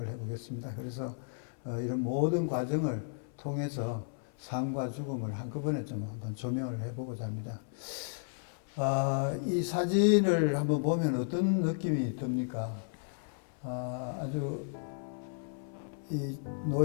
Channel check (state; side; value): silent; right; 55 dB below the other